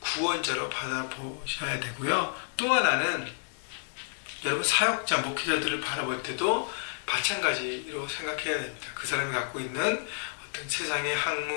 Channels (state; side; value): silent; right; digital silence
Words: 받아보셔야 되고요. 또 하나는 여러분, 사역자, 목회자들을 바라볼 때도 마찬가지로 생각해야 됩니다. 그 사람이 갖고 있는 어떤 세상의